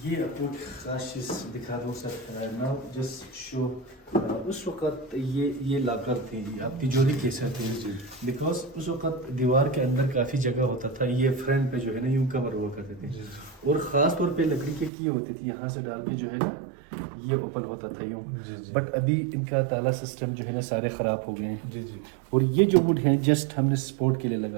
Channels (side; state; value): left; drops out; at 14.9 s